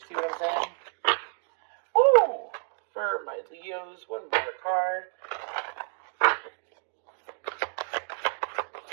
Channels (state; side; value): silent; left; 58 dB below the other